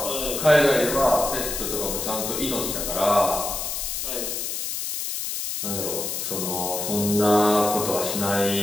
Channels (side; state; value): left; noise; hiss, 3 dB below the sound